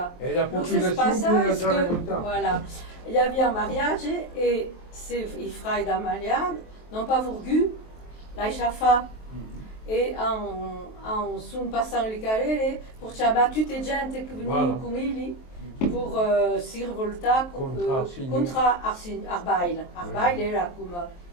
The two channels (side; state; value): right; late; 23 ms